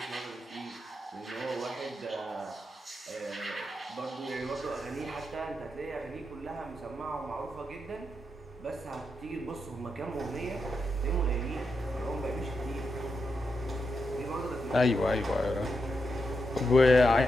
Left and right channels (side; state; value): both; normal; correlation 0.85